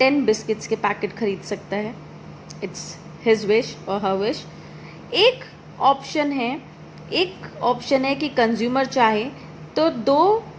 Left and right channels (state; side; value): identical; both; correlation 1.00